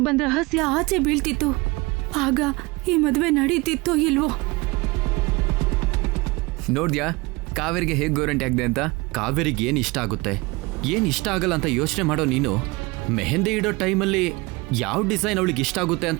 ಬಂದ ರಹಸ್ಯ ಆಚೆ ಬೀಳ್ತಿತ್ತು. ಆಗ ಈ ಮದುವೆ ನಡೀತಿತ್ತೋ ಇಲ್ವೋ? ನೋಡ್ದ್ಯಾ ಕಾವೇರಿಗೆ ಹೇಗೆ ಗೋರಂಟಿ ಆಗಿದೆ ಅಂತ? ಕಾವೇರಿಗೆ ಏನು ಇಷ್ಟ ಆಗುತ್ತೆ, ಏನು ಇಷ್ಟ ಆಗಲ್ಲ ಅಂತ ಯೋಚನೆ ಮಾಡೋ ನೀನು ಮೆಹಂದಿ ಇಡೋ ಟೈಮಲ್ಲಿ ಯಾವ ಡಿಸೈನ್ ಅವಳಿಗೆ ಇಷ್ಟ ಆಗುತ್ತೆ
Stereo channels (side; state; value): left; quieter; 24.2 dB